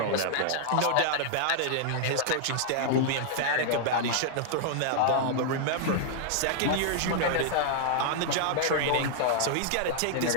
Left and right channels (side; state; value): both; different; correlation -0.01